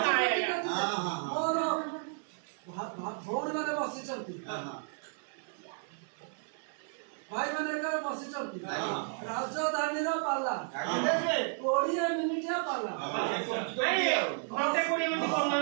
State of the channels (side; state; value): left; silent; 56 dB below the other